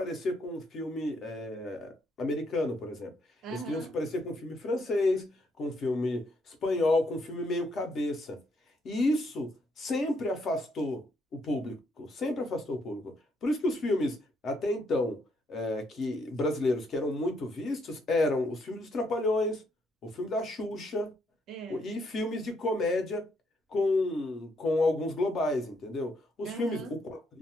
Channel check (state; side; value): normal; both; correlation 0.74